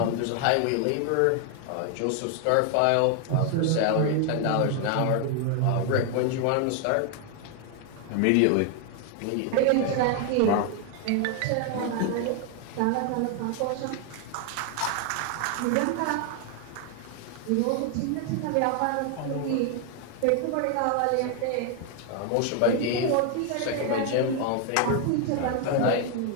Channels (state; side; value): different; both; correlation 0.00